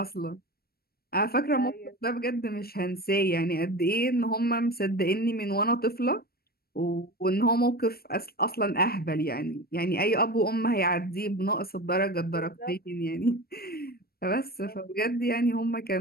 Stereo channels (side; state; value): right; late; 0.45 ms